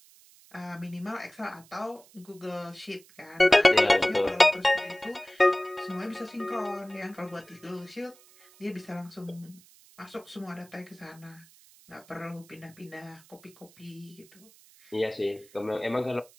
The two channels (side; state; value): right; noise; hiss, 26 dB below the sound